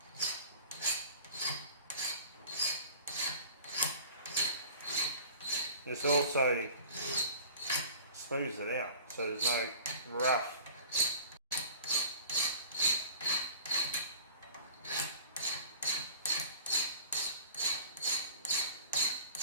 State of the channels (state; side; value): inverted; both; correlation -0.43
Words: this also smooths it out, so there's no rough.